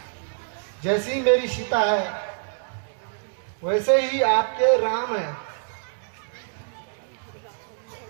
जैसी मेरी सीता है वैसे ही आपके राम है।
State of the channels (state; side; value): silent; left; digital silence